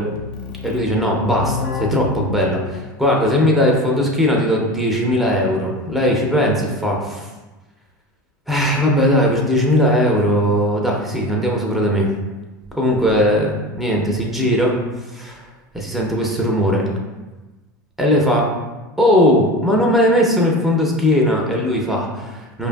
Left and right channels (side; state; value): both; normal; correlation 0.31